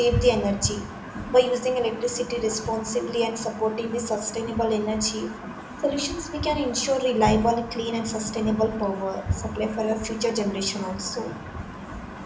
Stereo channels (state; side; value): identical; both; correlation 1.00